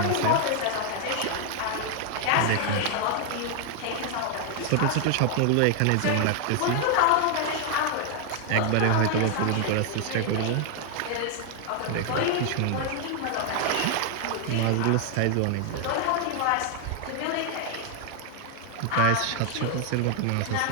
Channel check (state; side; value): different; both; correlation 0.00